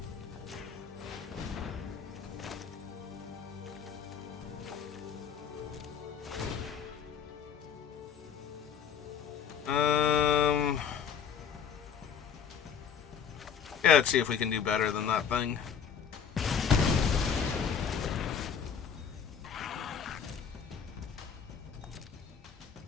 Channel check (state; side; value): quieter; right; 7.4 dB